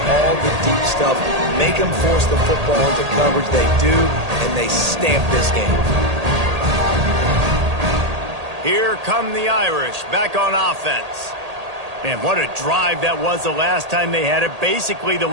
all the deep stuff. Make them force the football into coverage. They do, and they stamp this game. Here come the Irish back on offense. Man, what a drive that was the last time they had it. Basically the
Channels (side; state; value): left; late; 1.8 ms